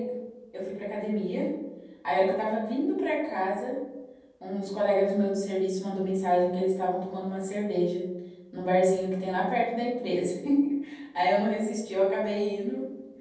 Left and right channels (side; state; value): both; identical; correlation 1.00